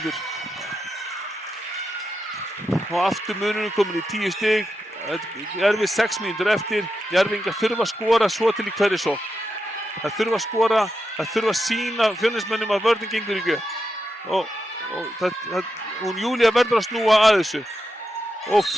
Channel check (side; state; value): both; normal; correlation 0.87